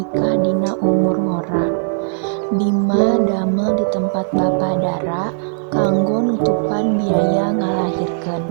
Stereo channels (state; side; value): silent; left; digital silence